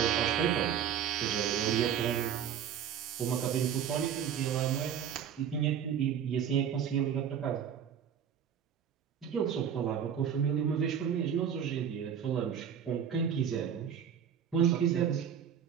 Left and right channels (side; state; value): left; quieter; 8.6 dB